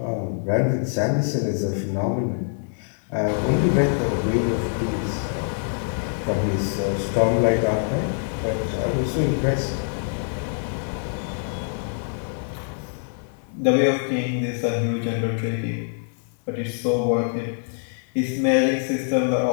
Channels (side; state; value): right; silent; 62 dB below the other